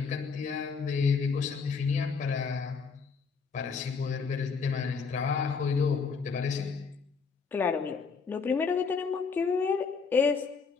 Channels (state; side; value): quieter; right; 5.3 dB